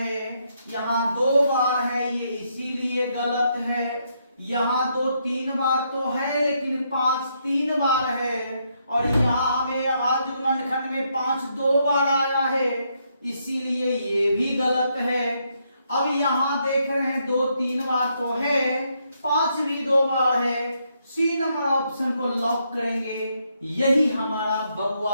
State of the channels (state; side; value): inverted; both; correlation -0.76